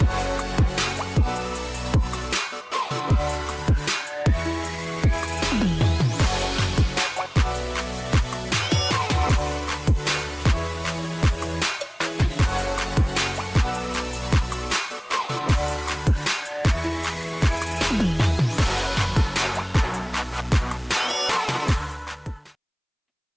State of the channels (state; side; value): identical; both; correlation 1.00